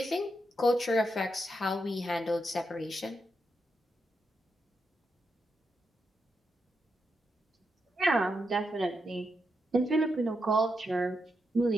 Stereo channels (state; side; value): normal; both; correlation 0.84